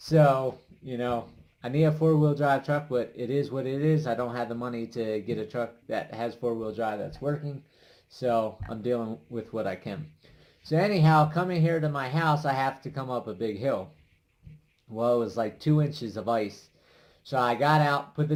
I need a four-wheel drive truck, but it is what it is. I don't have the money to get a truck that has four-wheel drive that's working. So I'm dealing with what I can. So anyhow, coming here to my house, I have to come up a big hill. Well, it was like 2 inches of ice. So I got out, put the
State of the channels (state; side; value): identical; both; correlation 1.00